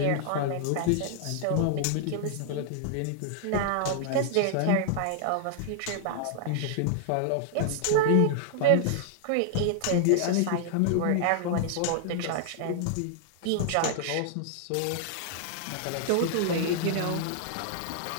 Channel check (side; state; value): both; different; correlation -0.01